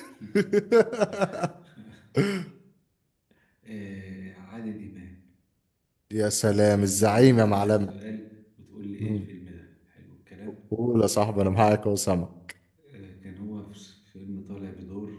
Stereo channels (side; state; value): both; identical; correlation 1.00